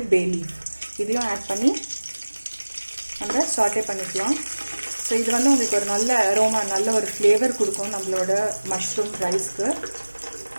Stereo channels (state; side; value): inverted; both; correlation -1.00